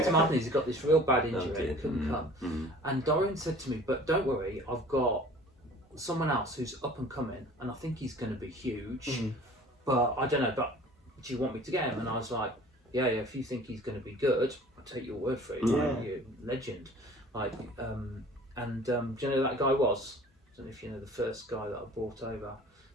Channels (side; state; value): both; normal; correlation 0.47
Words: Martinez. He got this real bad injury and couldn't come. And Dorian said to me, but don't worry, I've got someone else who's up and coming, and I think he's going to be huge. But I don't know, but do you want me to get him? And I was like, yeah, if you think he's going to be good, I'll take your word for it. You're a legend. Do you know who that guy was? I don't know if you know the first guy that I brought over.